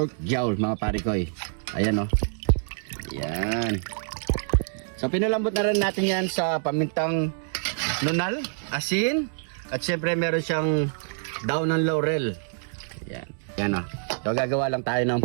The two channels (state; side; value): silent; left; digital silence